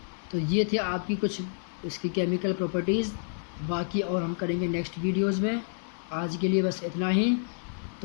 तो ये थे आपकी कुछ इसकी केमिकल प्रॉपर्टीज़ बाकी और हम करेंगे नेक्स्ट वीडियोस में। आज के लिए बस इतना ही।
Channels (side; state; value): right; silent; 59 dB below the other